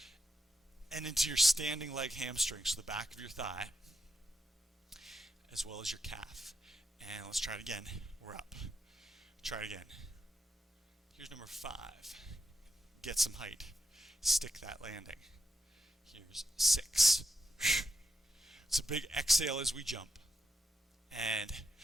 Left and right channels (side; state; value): both; normal; correlation 0.84